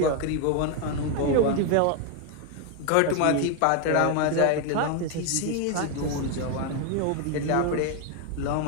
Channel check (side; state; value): both; different; correlation 0.01